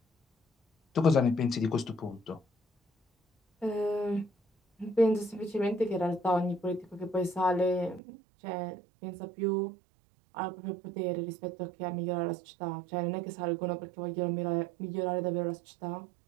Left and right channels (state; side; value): drops out; left; at 8.0 s